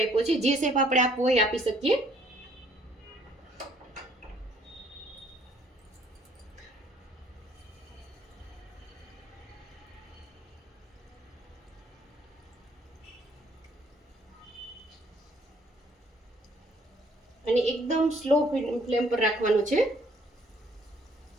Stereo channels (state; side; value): normal; both; correlation 0.62